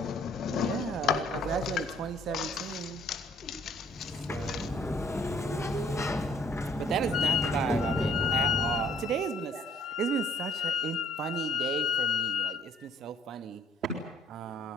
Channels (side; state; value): both; normal; correlation 0.60